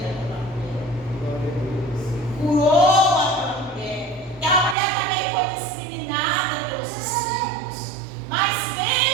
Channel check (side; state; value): left; drops out; at 4.8 s